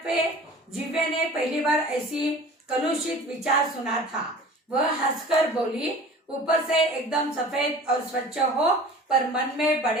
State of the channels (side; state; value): both; normal; correlation 0.42